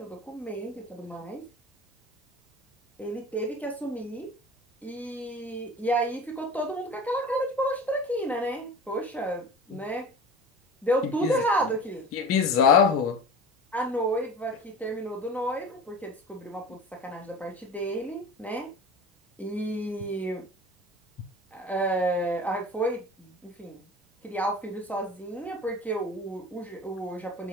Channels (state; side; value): normal; both; correlation 0.36